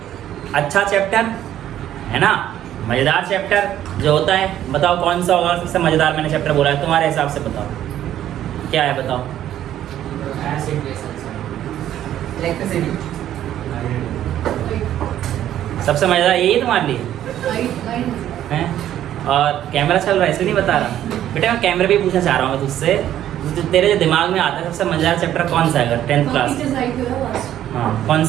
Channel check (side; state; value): left; quieter; 11.7 dB